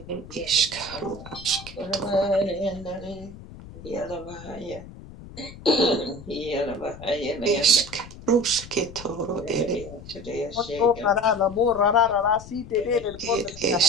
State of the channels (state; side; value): noise; left; rumble, 16 dB below the sound